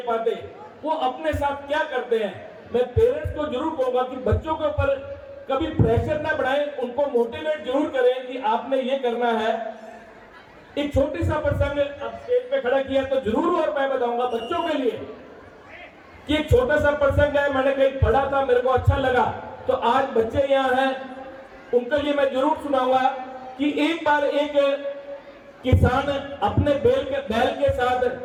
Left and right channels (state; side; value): identical; both; correlation 1.00